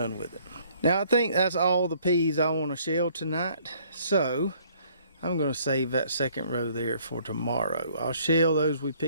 with it. Now, I think that's all the peas I want to shell tonight, so I'm going to save that second row there for tomorrow. I'll shell those we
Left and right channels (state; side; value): inverted; both; correlation -0.61